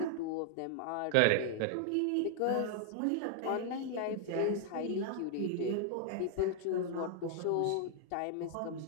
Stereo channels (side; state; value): both; different; correlation 0.00